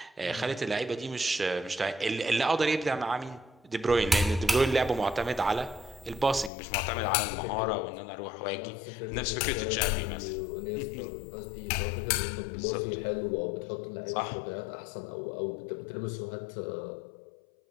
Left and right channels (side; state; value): right; drops out; at 6.5 s